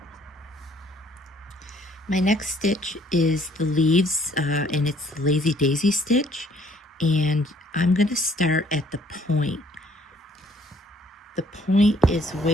My next stitch is the leaves, and it's the lazy daisy stitch, and I'm going to start at the point. The point is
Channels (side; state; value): both; normal; correlation 0.62